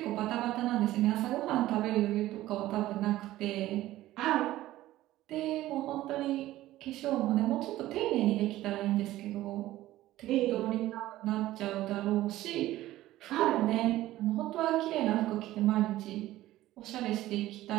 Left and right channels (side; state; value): left; quieter; 15.4 dB